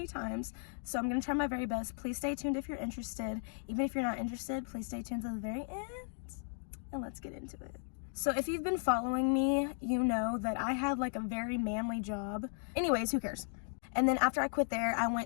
times, so I'm gonna try my very best. Please stay tuned if you're interested. Even if you're not interested, please stay tuned to the very end, and let's get into it. So if you've been following me, you know that I had like a very manly job. Anyways, who cares? And then after I quit there, I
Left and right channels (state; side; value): silent; right; 54 dB below the other